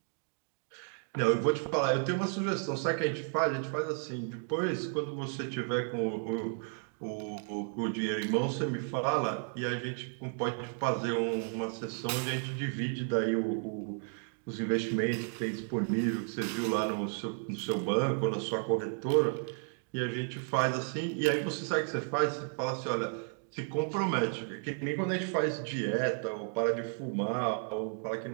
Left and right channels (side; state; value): left; silent; 56 dB below the other